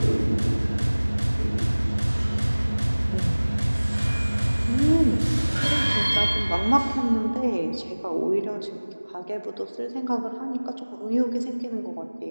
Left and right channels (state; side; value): inverted; both; correlation -1.00